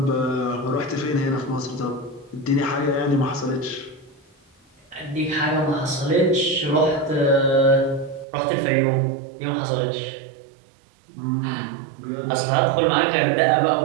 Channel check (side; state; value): left; drops out; at 8.2 s